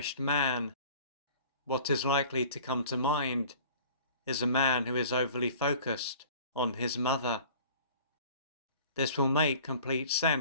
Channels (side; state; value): both; inverted; correlation -0.46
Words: man, what is likely to come to mind is a man who is overly focused on his mother. This will make complete